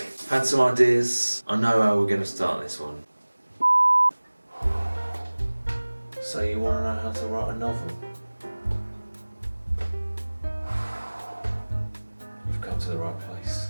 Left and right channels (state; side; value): inverted; both; correlation -1.00